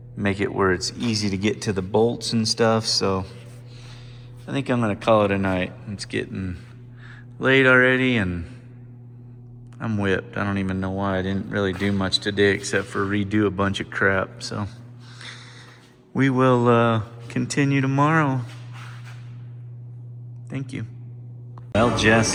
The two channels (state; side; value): identical; both; correlation 1.00